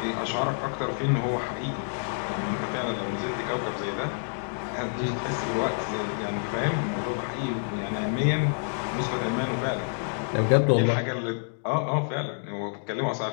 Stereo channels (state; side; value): silent; right; digital silence